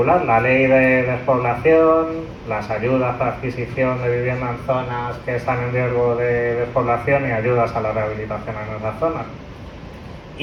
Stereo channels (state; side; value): identical; both; correlation 1.00